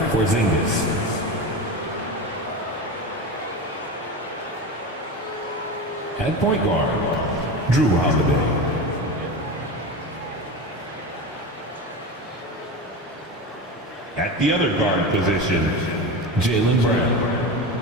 Porzingis. At point guard, Drew Holiday. At the other guard position, Jaylen Brown.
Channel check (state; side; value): normal; both; correlation 0.25